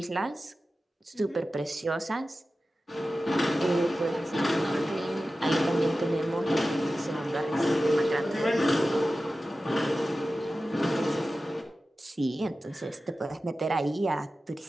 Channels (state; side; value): normal; both; correlation 0.94